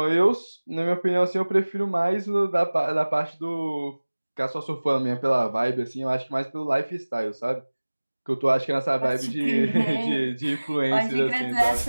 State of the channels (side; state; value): both; inverted; correlation -1.00